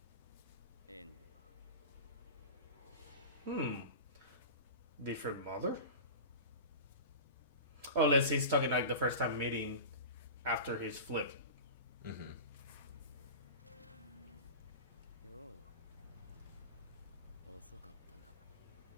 Different mother? Oh, unless he's talking like the first time meeting after his flip.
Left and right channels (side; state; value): both; inverted; correlation -0.31